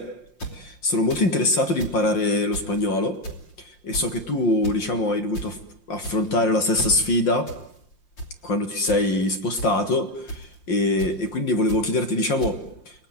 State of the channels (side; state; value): right; late; 5.6 ms